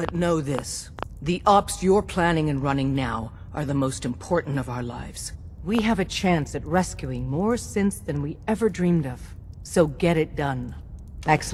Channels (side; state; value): both; identical; correlation 1.00